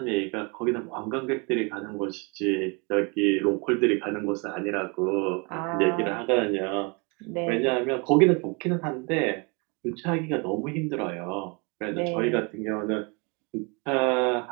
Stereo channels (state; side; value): quieter; left; 31.3 dB